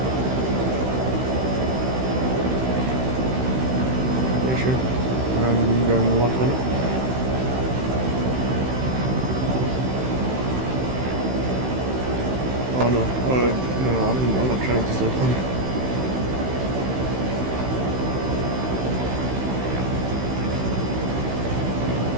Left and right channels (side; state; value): left; late; 16 ms